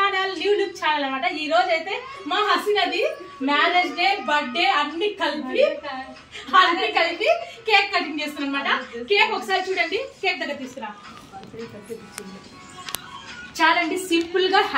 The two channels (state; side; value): identical; both; correlation 1.00